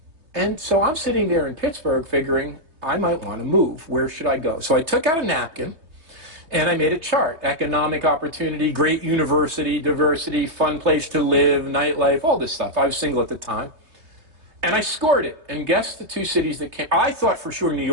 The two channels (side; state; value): left; late; 3.2 ms